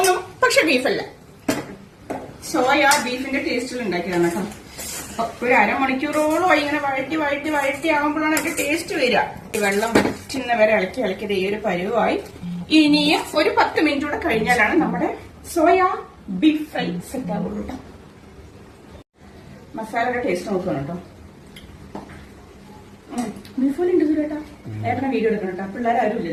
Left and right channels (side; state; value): both; identical; correlation 1.00